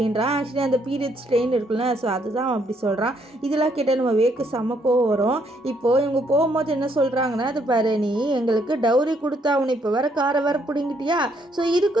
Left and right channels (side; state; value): both; normal; correlation 0.71